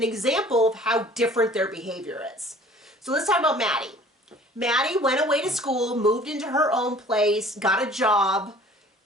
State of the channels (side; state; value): both; normal; correlation 0.50